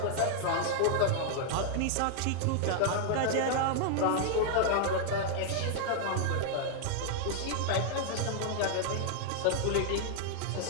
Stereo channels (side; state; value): both; different; correlation 0.00